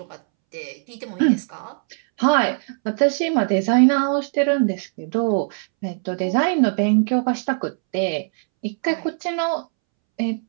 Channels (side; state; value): left; silent; 65 dB below the other